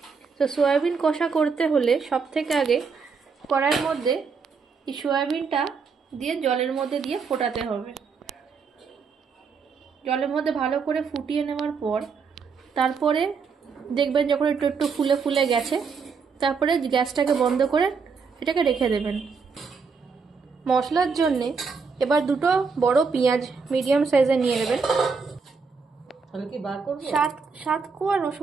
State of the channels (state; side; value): quieter; left; 5.3 dB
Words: তো সয়াবিন কষা করতে হলে সব থেকে আগে কড়াইয়ের মধ্যে এই সয়াবিনটা দিয়ে জলের মধ্যে দিয়ে ফোটাতে হবে। জলের মধ্যে ভালো করে ফুটিয়ে নেওয়ার পর তারপরে দেখবেন যখন একটু একটু ফুলে ফুলে গেছে, তারপরে গ্যাসটাকে বন্ধ করে এটাকে রেখে দেবেন। মশলার জন্যে এবার দুটো বড় পেঁয়াজ মিডিয়াম সাইজে নিয়ে নেবেন। সাত কোয়া